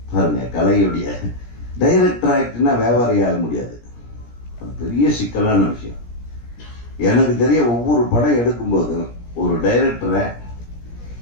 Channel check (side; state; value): right; late; 17 ms